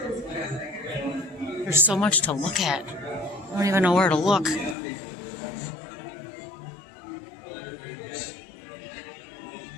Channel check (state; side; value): drops out; right; at 4.8 s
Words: There's so much to look at. I don't even know where to look.